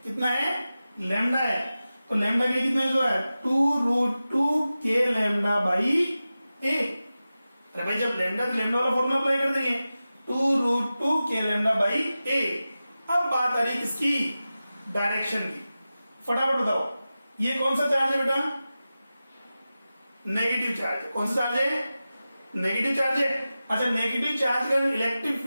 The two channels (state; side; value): inverted; both; correlation -0.94